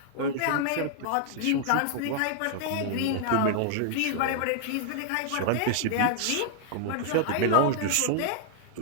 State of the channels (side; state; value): both; different; correlation 0.00